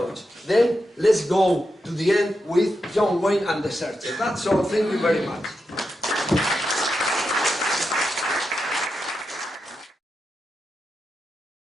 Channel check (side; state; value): both; normal; correlation 0.87